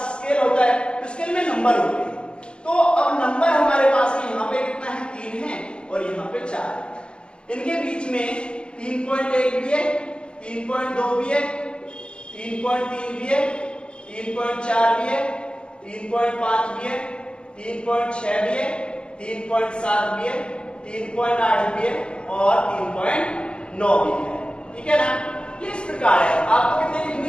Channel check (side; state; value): right; late; 0.055 ms